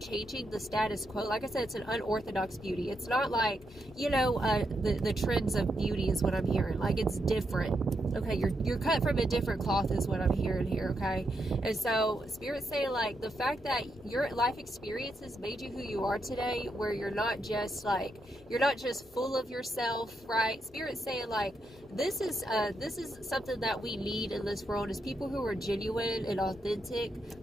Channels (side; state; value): both; normal; correlation 0.82